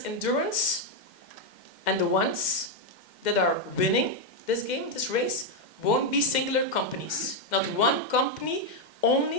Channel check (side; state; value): right; late; 2.1 ms